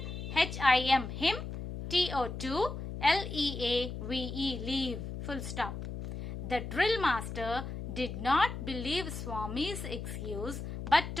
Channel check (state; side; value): noise; left; hum, 7 dB below the sound